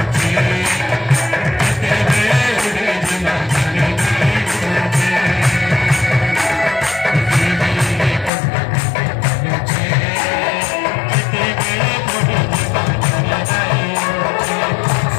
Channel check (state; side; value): drops out; right; at 8.3 s